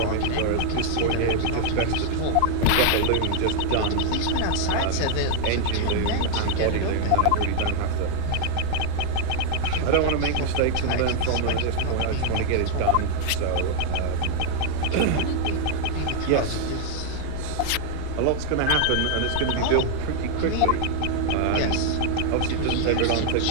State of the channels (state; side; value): different; both; correlation 0.00